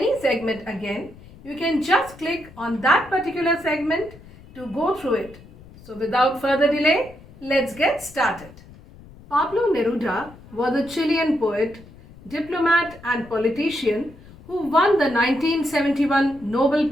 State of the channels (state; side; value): noise; left; rumble, 21 dB below the sound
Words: segment again, you can just click on that particular segment to go through it. So without further delay, let's get started. Pablo Neruda was a Chilean poet, diplomat and politician who won the 1971 Nobel